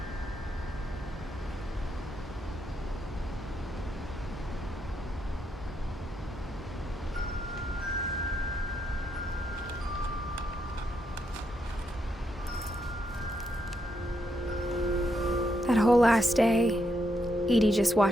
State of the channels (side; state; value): both; normal; correlation 0.80